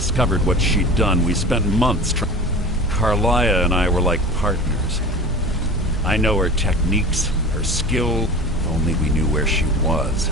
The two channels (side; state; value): both; normal; correlation 0.35